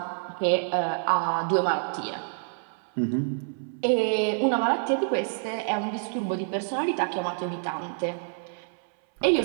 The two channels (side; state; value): left; silent; 60 dB below the other